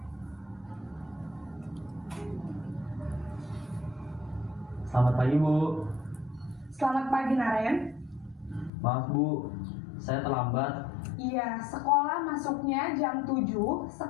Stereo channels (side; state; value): right; drops out; at 8.7 s